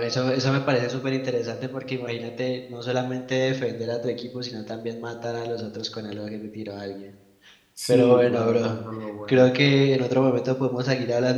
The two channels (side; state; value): both; identical; correlation 1.00